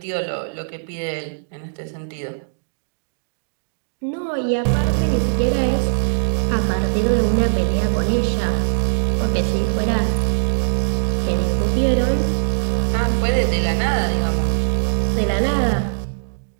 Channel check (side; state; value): left; silent; digital silence